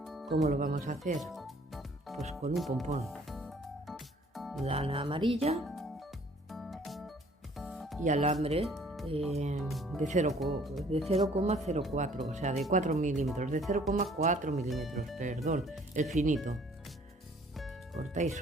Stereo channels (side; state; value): both; normal; correlation 0.57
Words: ¿Cómo lo vamos a hacer? Pues con un pompón, lana amarilla y alambre de 0,04, o sea, de 4 milímetros, de 0,4 milímetros, perdón, el finito. Cortáis